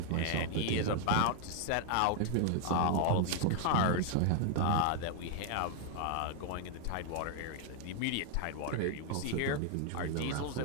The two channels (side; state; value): both; different; correlation 0.00